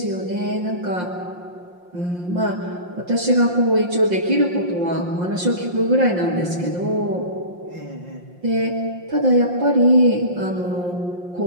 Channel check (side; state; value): left; late; 5.7 ms